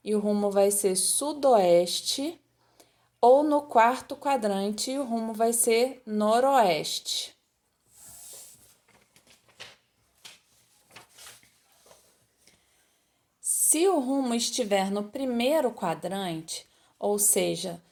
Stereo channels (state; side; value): identical; both; correlation 1.00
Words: e o rumo vai ser sudoeste ou no quarto quadrante e o rumo vai ser noroeste. Se o rumo estiver no primeiro quadrante, ou seja,